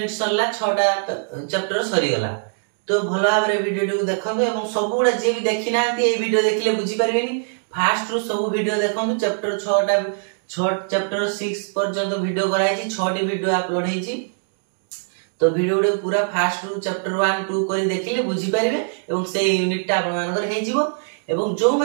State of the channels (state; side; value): silent; left; digital silence